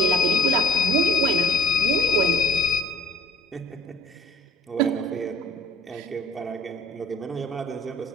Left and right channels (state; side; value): normal; both; correlation 0.48